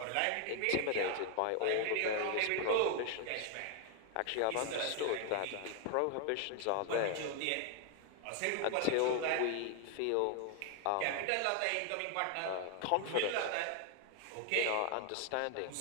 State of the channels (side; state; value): both; different; correlation 0.00